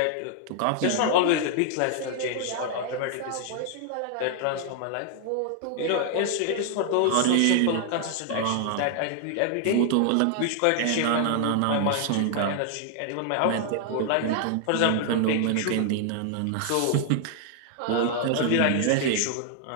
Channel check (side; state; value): both; different; correlation 0.00